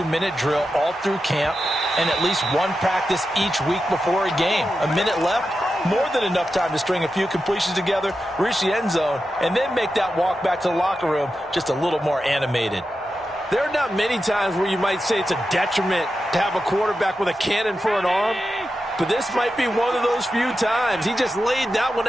drill all through camp and at least one practice each week before a game. A minute left, more than enough time to string a few completions together, reach the end zone, and then make that walk back to the locker room just a little more animated. There are not many times where you might say it's a detriment to have a quarterback with a cannon for an arm, but this might be one of those few times. He just laid that one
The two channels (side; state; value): both; normal; correlation 0.90